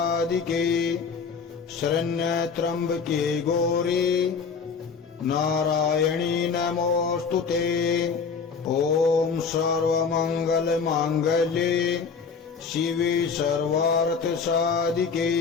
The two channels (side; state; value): right; quieter; 5.6 dB